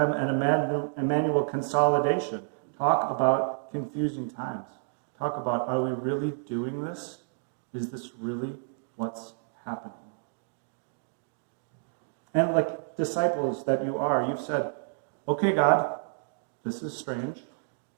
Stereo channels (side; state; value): left; silent; digital silence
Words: and Emmanuel consolidation. Talk about confusing times. Talk about, are we really doing this? Is this really what's happening? And like disciples that you are, you've said, okay, God, this is strange,